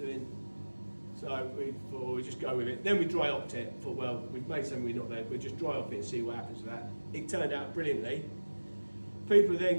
So we thought we'd just go with it. Then we dry hopped it. Thought, well, we've made something we're not there. We'll just dry hop it and see what happens with that. It turned out brilliantly. People are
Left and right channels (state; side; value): inverted; both; correlation -1.00